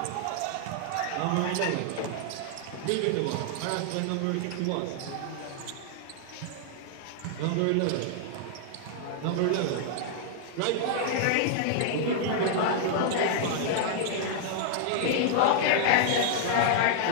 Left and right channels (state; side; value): different; both; correlation -0.01